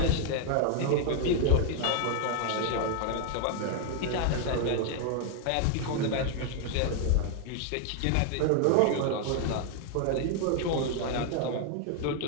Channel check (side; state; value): both; different; correlation 0.00